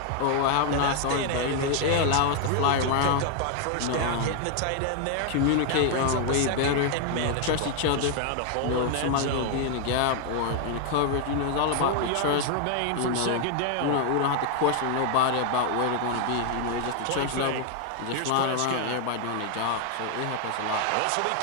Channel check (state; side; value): different; both; correlation 0.00